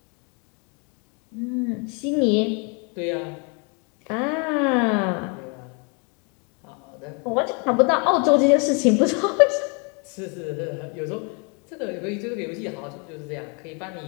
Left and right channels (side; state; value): right; quieter; 34.8 dB